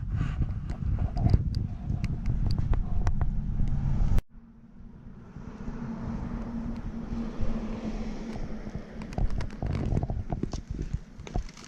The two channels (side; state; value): both; identical; correlation 1.00